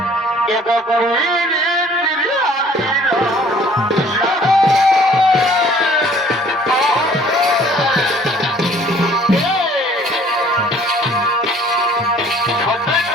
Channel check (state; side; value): normal; both; correlation 0.55